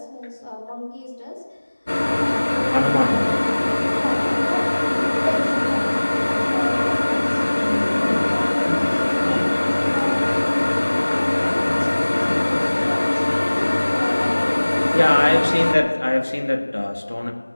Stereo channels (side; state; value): both; inverted; correlation -1.00